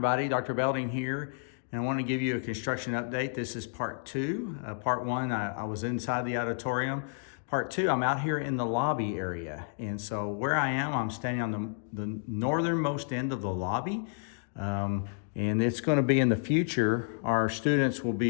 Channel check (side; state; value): right; silent; digital silence